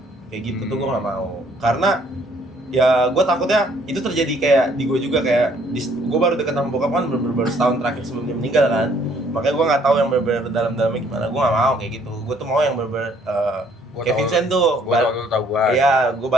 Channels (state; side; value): normal; both; correlation 0.63